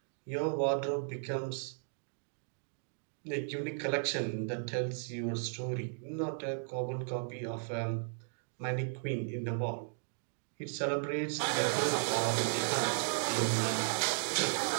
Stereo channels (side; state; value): left; silent; digital silence